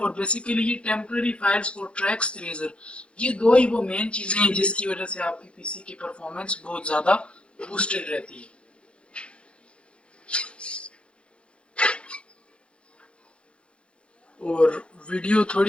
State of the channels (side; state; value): right; late; 0.059 ms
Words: बेसिकली ये टेम्पररी फाइल्स और ट्रैक्स इरेजर, ये दो ही वो मेन चीज़ें हैं जिसकी वजह से आपकी पीसी की परफॉर्मेंस बहुत ज़्यादा बूस्टेड रहती है। और वीडियो